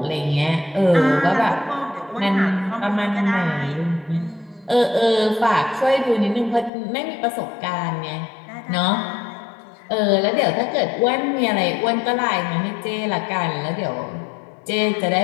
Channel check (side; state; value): right; drops out; at 6.7 s